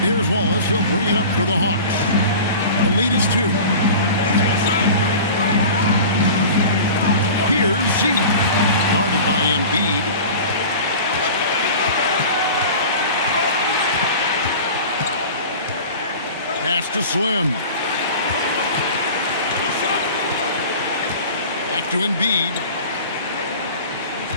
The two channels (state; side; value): inverted; both; correlation -0.37